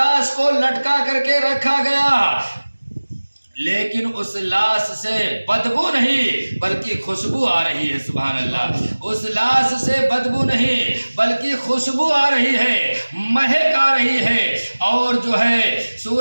کو لٹکا کر کے رکھا گیا، لیکن اس لاش سے بدبو نہیں بلکہ خوشبو آ رہی ہے۔ سبحان اللہ، اس لاش سے بدبو نہیں بلکہ خوشبو آ رہی ہے، مہک آ رہی ہے، اور جو ہے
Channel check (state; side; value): inverted; both; correlation -1.00